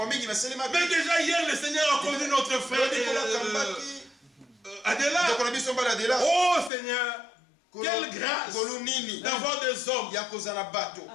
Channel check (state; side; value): drops out; right; at 6.7 s